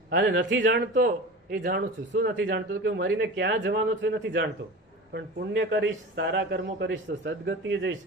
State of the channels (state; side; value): normal; both; correlation 0.33